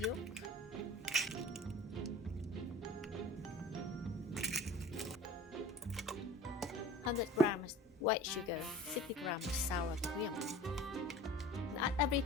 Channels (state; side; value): normal; both; correlation 0.41